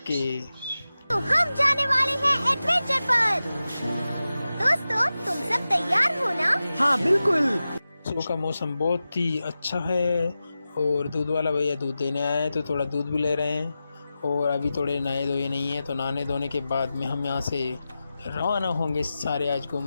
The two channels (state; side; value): inverted; both; correlation -0.94